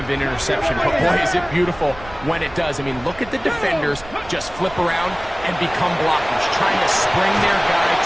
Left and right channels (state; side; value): noise; right; rumble, 18 dB below the sound